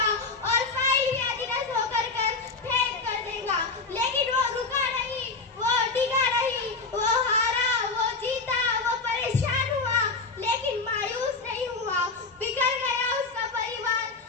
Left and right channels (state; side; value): quieter; right; 4.0 dB